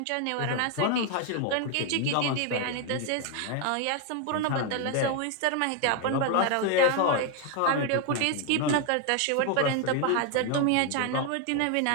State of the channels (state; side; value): different; both; correlation 0.01